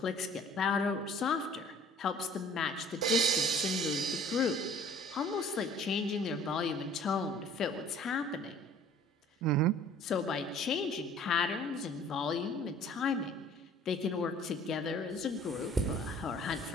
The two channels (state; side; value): normal; both; correlation 0.52